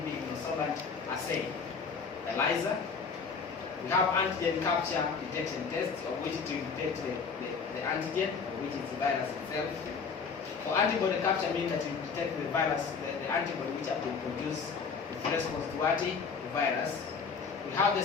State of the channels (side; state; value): right; quieter; 5.5 dB